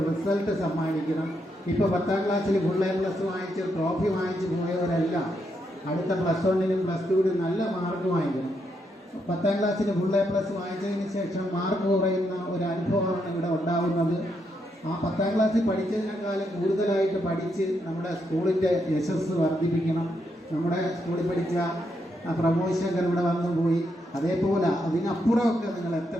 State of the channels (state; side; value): normal; both; correlation 0.79